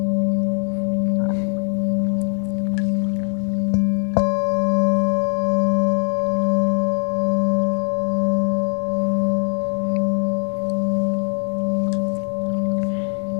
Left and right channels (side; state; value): right; silent; digital silence